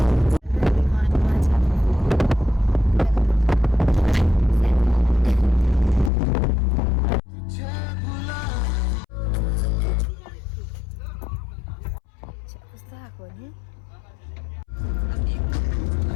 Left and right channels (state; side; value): drops out; right; at 6.1 s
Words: कस्तो आएको नि?